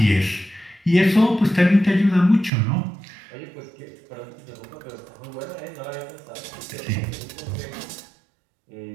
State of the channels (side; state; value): left; drops out; at 2.5 s